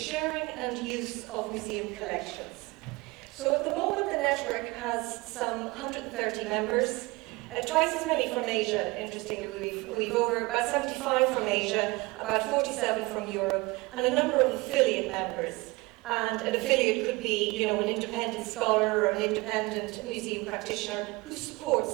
and use of museum collections. So at the moment the network has some 130 members, twice as many from Asia, interestingly. We've over about 75 from Asia, about 47 from Europe, and a number of affiliate members. And an affiliate could be, an independent scholar or an independent museum practitioner who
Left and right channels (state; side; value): quieter; left; 23.5 dB